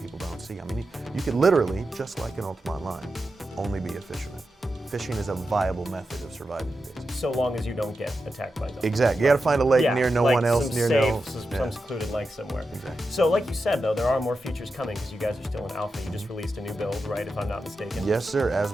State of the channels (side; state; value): both; normal; correlation 0.90